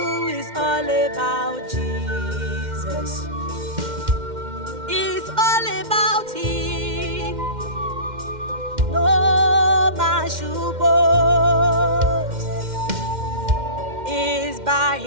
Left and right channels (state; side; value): late; left; 2.1 ms